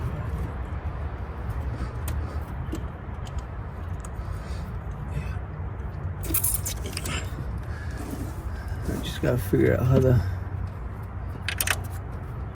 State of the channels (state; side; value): identical; both; correlation 1.00